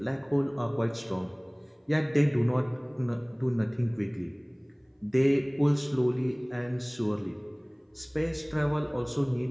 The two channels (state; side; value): identical; both; correlation 1.00